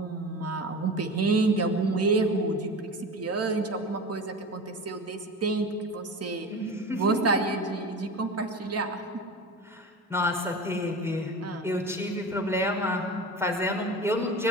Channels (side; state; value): both; normal; correlation 0.31